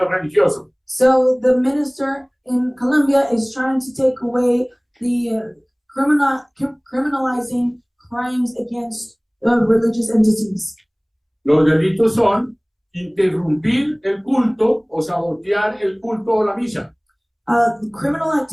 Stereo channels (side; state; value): both; identical; correlation 1.00